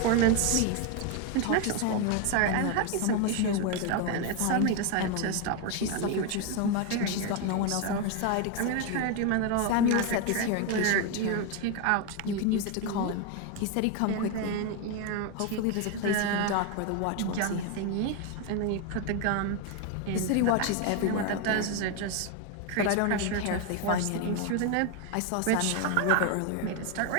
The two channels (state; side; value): different; both; correlation 0.01